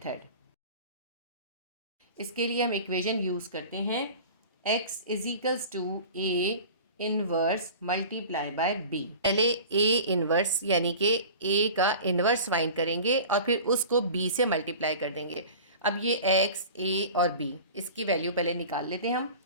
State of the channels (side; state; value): both; inverted; correlation -0.38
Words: इसके लिए हम इक्वेशन यूज़ करते हैं x is equals to a inverse multiply by b। पहले a इनवर्स यानी कि a का इनवर्स फाइंड करेंगे और फिर उसको b से मल्टीप्लाई कर देंगे। अब ये x, a और b, इसकी वैल्यू पहले निकाल लेते हैं हम,